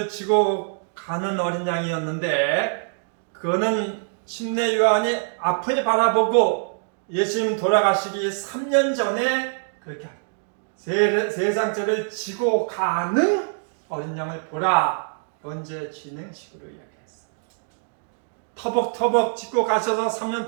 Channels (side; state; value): left; silent; digital silence